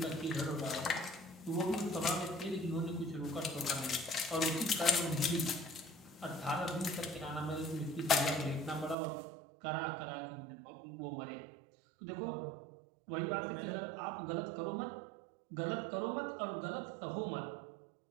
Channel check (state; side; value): drops out; left; at 9.0 s